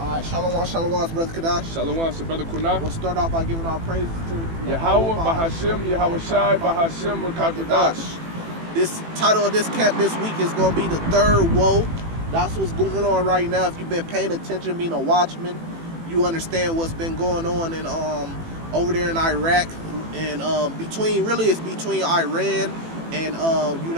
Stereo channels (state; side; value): late; left; 18 ms